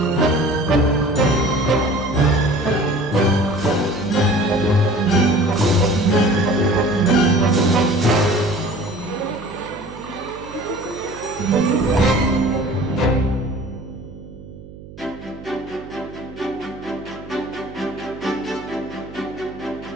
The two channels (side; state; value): right; noise; hum, 17 dB below the sound